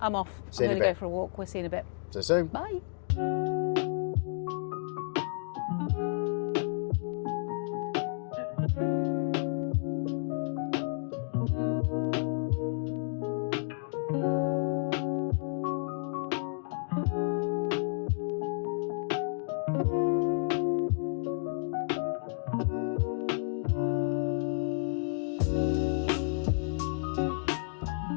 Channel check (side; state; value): right; silent; 57 dB below the other